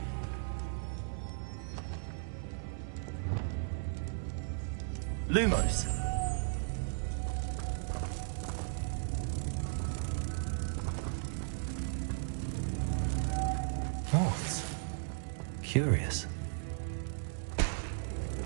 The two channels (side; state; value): left; silent; digital silence